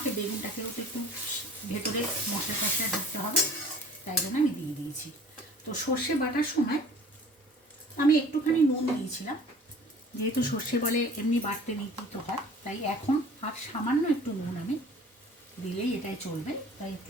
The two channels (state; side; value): normal; both; correlation 0.48